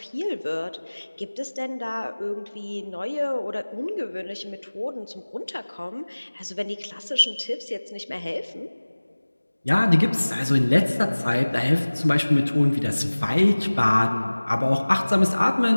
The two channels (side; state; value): both; inverted; correlation -1.00